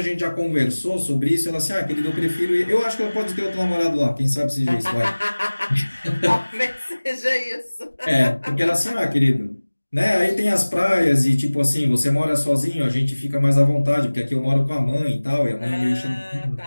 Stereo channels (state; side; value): inverted; both; correlation -1.00